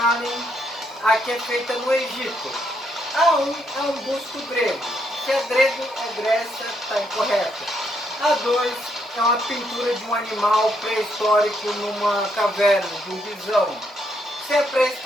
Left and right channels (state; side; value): normal; both; correlation 0.75